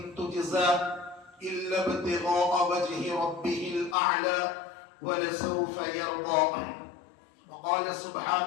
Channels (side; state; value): right; drops out; at 4.0 s